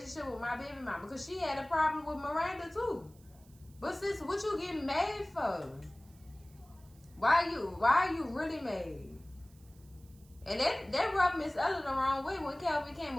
with my baby mama because she had a problem with Miranda too. But sis, what you getting mad for? Why are you really mad? And that rubbed Miss Ella the wrong way when Calvin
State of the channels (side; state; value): right; noise; hiss, 28 dB below the sound